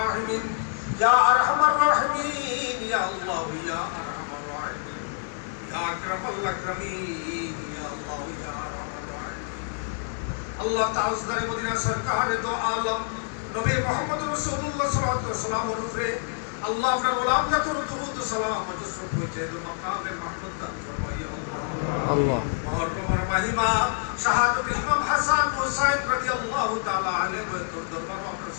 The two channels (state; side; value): silent; right; 60 dB below the other